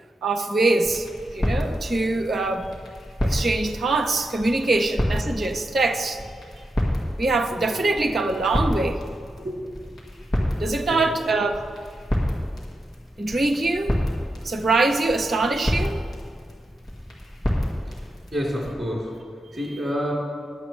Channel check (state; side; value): normal; both; correlation 0.87